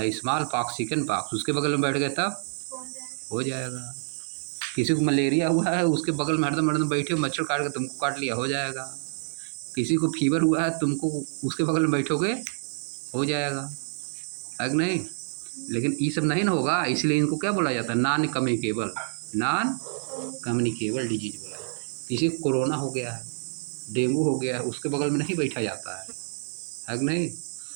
स्मॉल पॉक्स, चिकन पॉक्स, उसके बगल में बैठ गए तब हो जाएगा, किसी को मलेरिया हुआ है, उसके बगल में हरदम हरदम बैठे हो, मच्छर काट के तुमको काट लिया, हो जाएगा। किसी को फीवर हुआ है, तुमको उसके बगल में बैठोगे, हो जाएगा, है कि नहीं? लेकिन ये सब नहीं ना होगा, इसलिए इनको क्या बोला जाता है? नॉन कम्युनिकेबल डिजीज बोला जाता है। किसी को कोरोना हो गया है, डेंगू हो गया है, उसके बगल में नहीं बैठा जाता है कि नहीं?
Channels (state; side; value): silent; left; digital silence